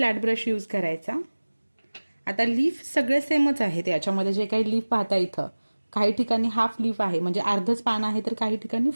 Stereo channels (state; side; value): inverted; both; correlation -1.00